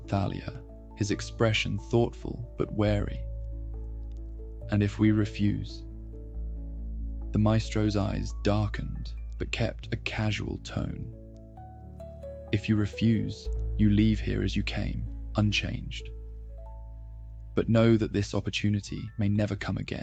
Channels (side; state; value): both; identical; correlation 1.00